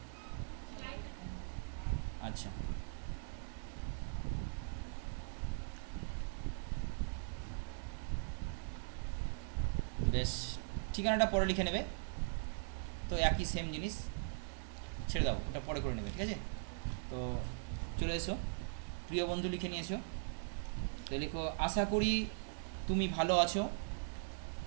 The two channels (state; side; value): silent; left; digital silence